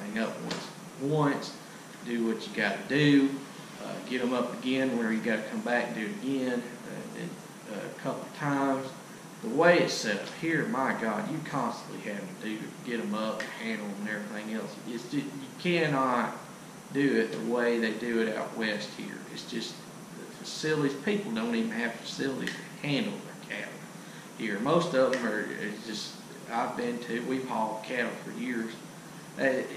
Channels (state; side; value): identical; both; correlation 1.00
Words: up once. Do what you got to do. Get them up again where you got to come back and do it again a couple of times. The way it's set up here, my God, you constantly having to get them up, handle them, and everything else. You cannot do it the way they do it out west here. It's just the facilities. People don't even have facilities to handle their cattle here. Most of them are just. We've hauled cattle for years.